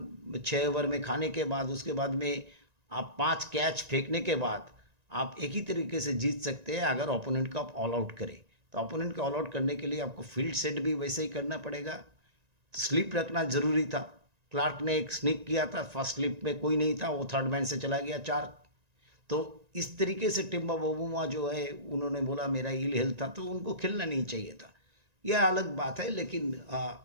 6 ओवर में खाने के बाद, उसके बाद में आप 5 कैच फेंकने के बाद आप एक ही तरीके से जीत सकते हैं अगर ओपोनेंट को आप ऑल आउट करें। तो ओपोनेंट को ऑल आउट करने के लिए आपको फील्ड सेट भी वैसे ही करना पड़ेगा। तो स्लिप रखना ज़रूरी था। क्लार्क ने एक स्निक किया था, फर्स्ट स्लिप में कोई नहीं था, वो थर्ड मैन से चला गया 4। तो इस तरीके से टिम्बा बबुआ जो है उन्होंने बोला मेरा इल हेल्थ था, तो उनको खेलना नहीं चाहिए था। यह अलग बात है। लेकिन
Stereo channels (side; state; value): left; late; 1.9 ms